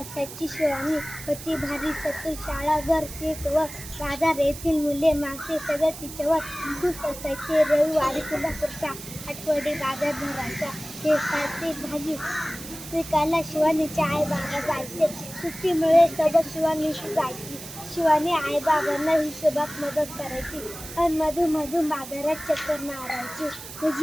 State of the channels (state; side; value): noise; right; hiss, 12 dB below the sound